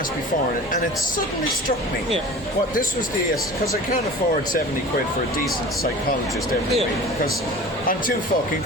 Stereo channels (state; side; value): normal; both; correlation 0.39